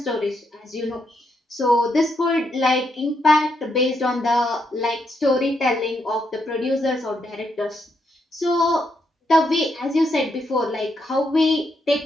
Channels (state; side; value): normal; both; correlation 0.78